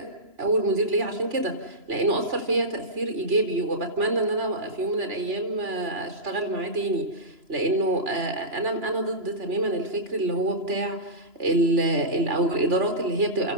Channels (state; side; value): late; left; 3.0 ms